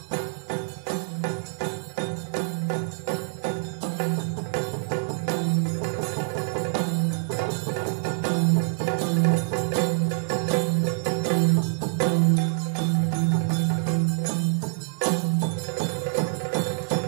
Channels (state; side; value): silent; left; digital silence